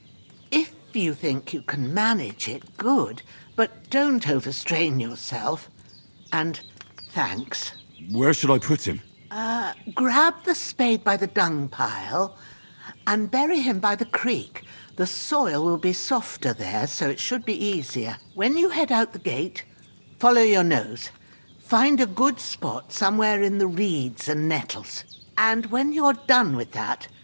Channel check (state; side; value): inverted; both; correlation -1.00